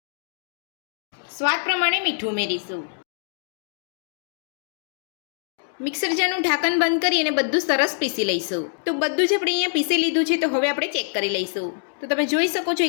સ્વાદ પ્રમાણે મીઠું ઉમેરીશું। મિક્સર જારનું ઢાંકણ બંધ કરી અને બધું સરસ પીસી લઈશું। તો બધું જ આપણે અહીંયા પીસી લીધું છે। તો હવે આપણે ચેક કરી લઈશું। તો તમે જોઈ શકો છો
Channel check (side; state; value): right; silent; digital silence